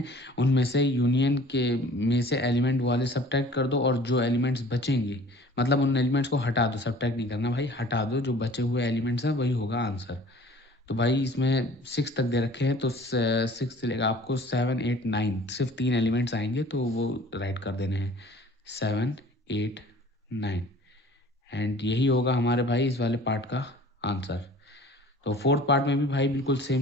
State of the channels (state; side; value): normal; both; correlation 0.49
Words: उनमें से यूनियन के में से एलिमेंट वाले सब्ट्रैक्ट कर दो, और जो एलिमेंट्स बचेंगे मतलब उन एलिमेंट्स को हटा दो, सब्ट्रैक्ट नहीं करना भाई, हटा दो, जो बचे हुए एलिमेंट्स हैं वही होगा आंसर। तो भाई इसमें 6 तक दे रखे हैं, तो 6 से लेकर आपको 7 8 9 सिर्फ 3 एलिमेंट्स आएंगे, तो वो राइट कर देने हैं 7 8 9। एंड यही होगा हमारे भाई इस वाले पार्ट का आंसर। तो फोर्थ पार्ट में भी भाई बिल्कुल